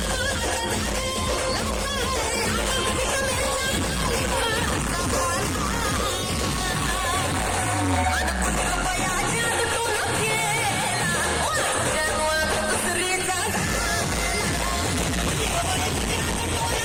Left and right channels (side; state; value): both; identical; correlation 1.00